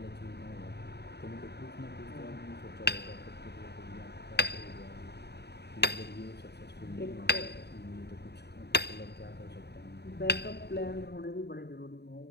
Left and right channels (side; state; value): right; late; 0.48 ms